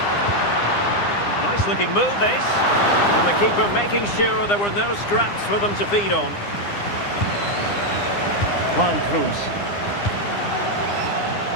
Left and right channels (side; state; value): right; late; 9.8 ms